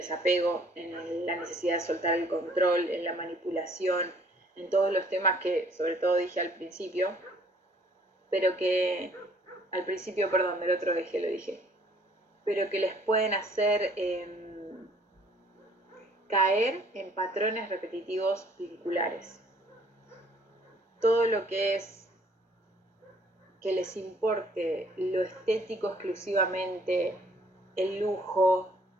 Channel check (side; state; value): both; normal; correlation 0.59